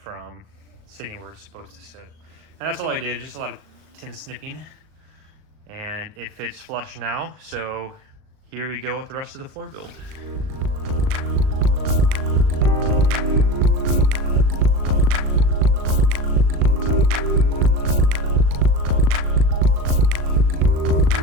sitting where it's supposed to sit. And that's all I did, just a lot of tin snipping. And it fits flush now, so here we go with the rest of the floor build.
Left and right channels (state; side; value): late; left; 38 ms